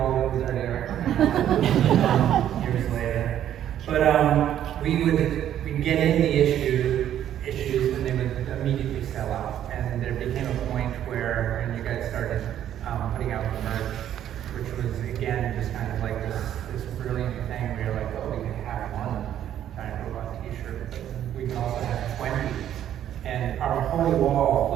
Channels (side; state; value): left; quieter; 10.9 dB